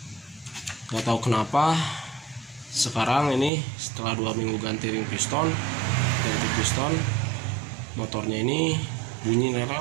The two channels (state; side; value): drops out; left; at 3.5 s